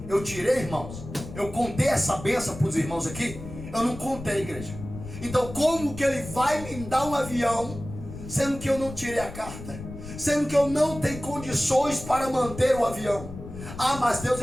Eu tirei, irmãos. Eu contei essa bênção para os irmãos aqui. Eu não contei, igreja. Então como que ele vai me dar um avião, sendo que eu não tirei a carta? Sendo que eu não tenho condições para manter o avião? Ah, mas Deus,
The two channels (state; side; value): noise; left; rumble, 12 dB below the sound